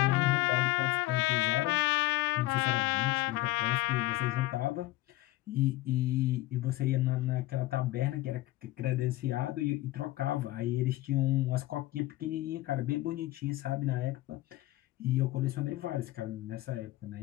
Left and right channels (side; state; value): right; quieter; 17.6 dB